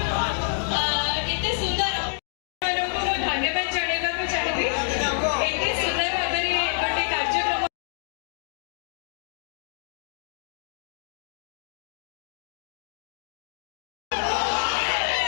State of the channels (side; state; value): right; silent; digital silence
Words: ଏତେ ସୁନ୍ଦର ଆପଣମାନଙ୍କୁ ମୁଁ ଧନ୍ୟବାଦ ଜଣାଇବାକୁ ଚାହିଁବି ଏତେ ସୁନ୍ଦର ଭାବରେ ଗୋଟେ କାର୍ଯ୍ୟକ୍ରମ